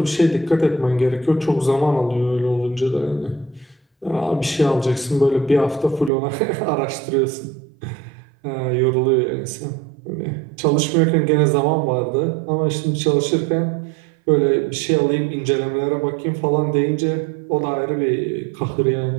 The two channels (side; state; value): left; drops out; at 6.1 s